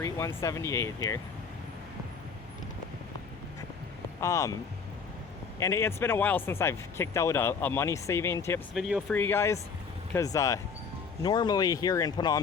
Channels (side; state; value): right; quieter; 5.6 dB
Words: 178 here. And it's been a while since I've kicked out a money saving tips video for you guys, because normally here in Phnom